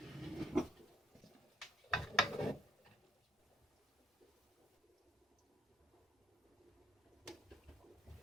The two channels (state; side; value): normal; both; correlation 0.66